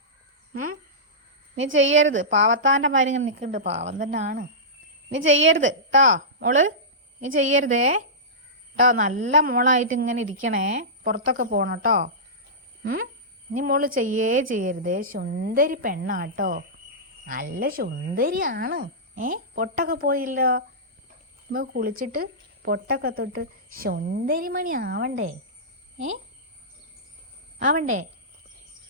നീ ചെയ്യരുത്. പാവത്താൻ്റെ മാതിരി ഇങ്ങനെ നിൽക്കുന്നുണ്ട്. പാവം തന്നെ ആണ്. നീ ചെയ്യരുത് കേട്ടോ മോള്. നീ ചെയ്യരുതേ കേട്ടോ. നല്ല മോളായിട്ട് ഇങ്ങനെ ഇരിക്കണേ. പുറത്തൊക്കെ പോകണം കേട്ടോ. നീ മോള് ചെയ്യരുതേ. സുന്ദരി പെണ്ണാട്ടോ. നല്ല സുന്ദരിയാണ്. പൊട്ടൊക്കെ പോയില്ലോ. നമുക്ക് കുളിച്ചിട്ട് പൊട്ടൊക്കെ തൊട്ട് സുന്ദരിമണി ആവണ്ടേ? ആവണ്ടേ?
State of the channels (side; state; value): both; normal; correlation -0.16